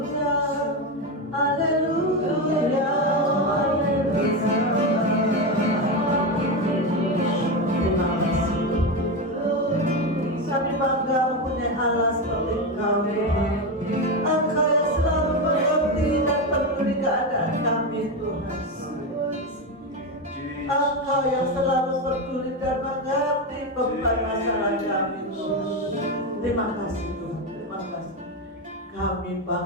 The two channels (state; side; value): normal; both; correlation 0.14